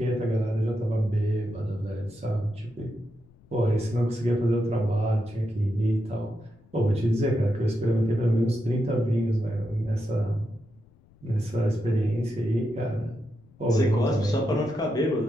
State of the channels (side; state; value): left; noise; rumble, 29 dB below the sound